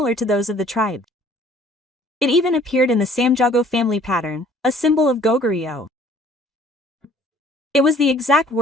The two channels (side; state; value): both; normal; correlation 0.55